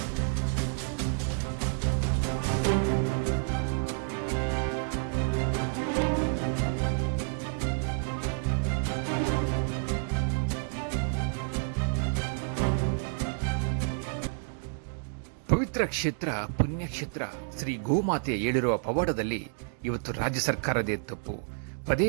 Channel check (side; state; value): left; silent; digital silence